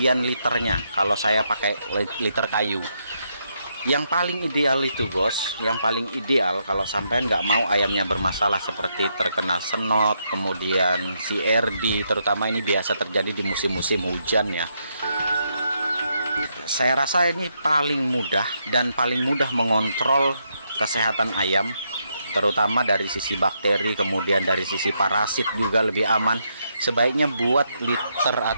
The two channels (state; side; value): inverted; both; correlation -0.79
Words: liternya kalau saya pakai liter kayu? Yang paling ideal itu, bos, yang paling ideal kalau sampean nggak mau ayamnya bermasalah seperti terkena senot, kemudian CRD, terutama ini biasa terjadi di musim-musim hujan ya. Saya rasa ini paling mudah dan paling mudah mengontrol kesehatan ayam, terutama dari sisi bakteri, kemudian dari sisi parasit juga lebih aman. Sebaiknya buat liter